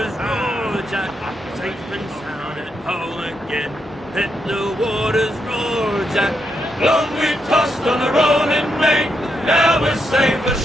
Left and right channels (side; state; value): both; normal; correlation 0.81